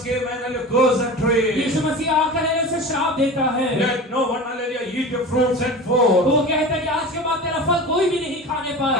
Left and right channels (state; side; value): normal; both; correlation 0.32